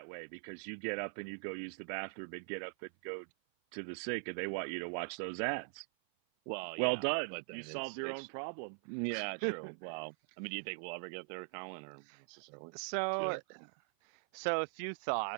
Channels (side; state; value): left; silent; 50 dB below the other